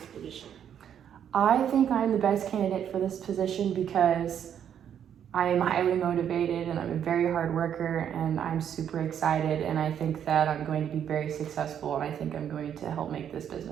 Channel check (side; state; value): left; quieter; 9.1 dB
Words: position? I think I'm the best candidate for this position because I am highly motivated and I'm a very hard worker and I'm super excited, and I think that I'm going to be very successful, and I think I'm going to help make this